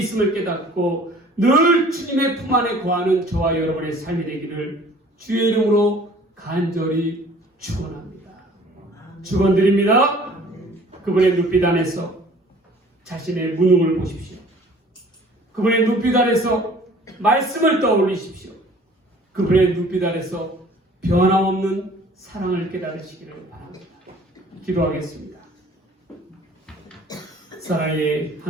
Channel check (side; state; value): both; normal; correlation 0.51